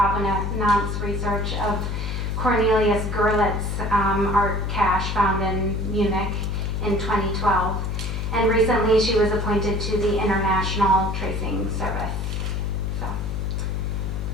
research of Cornelius Gurlitt's art cache found in Munich in 2012. And recently she was appointed to the International Tracing Service. So,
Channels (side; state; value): left; noise; hum, 1 dB below the sound